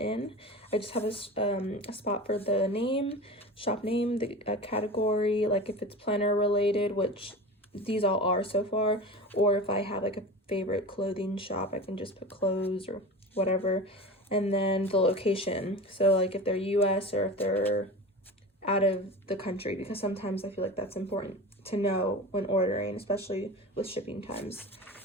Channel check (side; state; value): both; normal; correlation 0.32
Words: I just have a spot for the name, shop name, the category, like if it's planner related, which these all are so far, or if I have like a favorite clothing shop, I can just put clothes or whatever. And then the location, so like if they're US or if they're out of the country, because sometimes I feel like that's important to know when ordering, especially with shipping times.